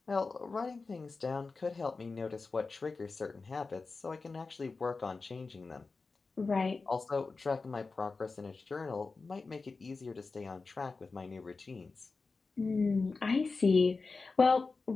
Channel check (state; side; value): quieter; right; 4.1 dB